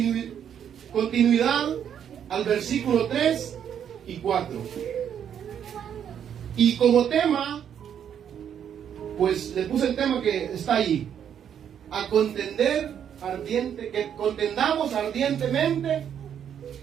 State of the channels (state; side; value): quieter; left; 8.8 dB